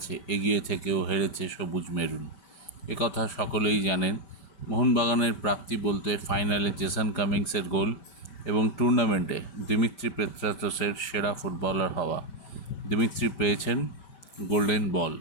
এগিয়ে থেকেও হেরেছে সবুজ মেরুন। একথা সকলেই জানেন। মোহনবাগানের প্রাপ্তি বলতে ফাইনালে জেসন কামিংসের গোল এবং টুর্নামেন্টে দিমিত্রি পেত্রাতসের সেরা ফুটবলার হওয়া। দিমিত্রি পেয়েছেন গোল্ডেন বল,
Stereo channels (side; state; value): right; late; 5.1 ms